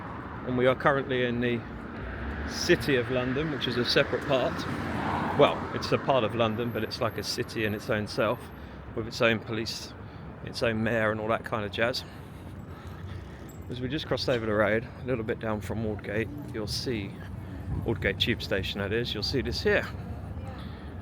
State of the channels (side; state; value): both; identical; correlation 1.00